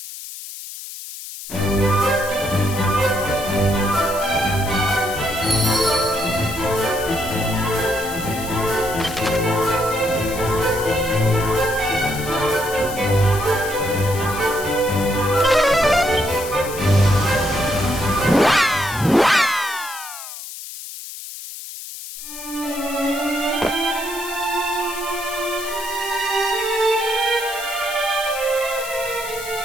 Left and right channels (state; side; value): noise; left; hiss, 11 dB below the sound